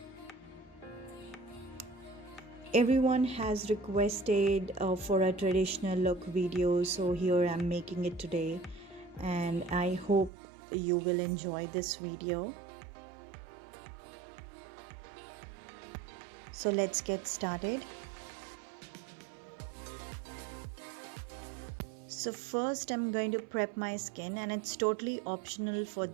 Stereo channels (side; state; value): left; drops out; at 10.3 s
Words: Everyone has requested for a traditional look video, so here I'm making it today, and I hope you will enjoy this video. So let's get started. So first I'm going to prep my skin, and it's totally optional for